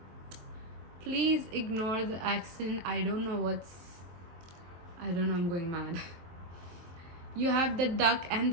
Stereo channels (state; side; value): late; left; 23 ms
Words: Please ignore the accent. I don't know, I'm going mad. You have the duck and